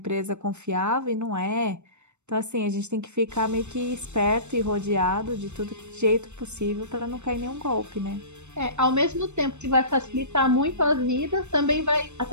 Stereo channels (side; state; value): left; late; 0.83 ms